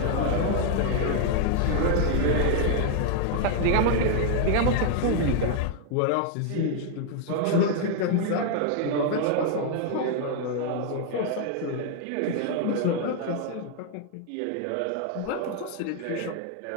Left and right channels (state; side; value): different; both; correlation 0.00